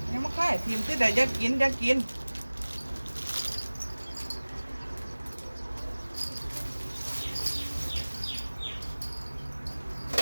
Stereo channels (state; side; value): inverted; both; correlation -1.00